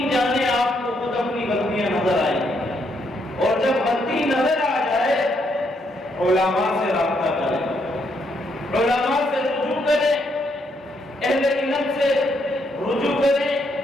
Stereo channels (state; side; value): normal; both; correlation 0.75